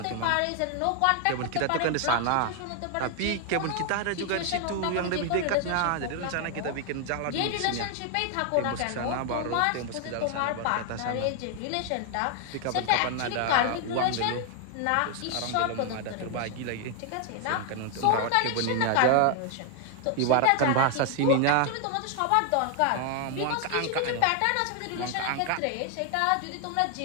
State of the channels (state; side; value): different; both; correlation 0.00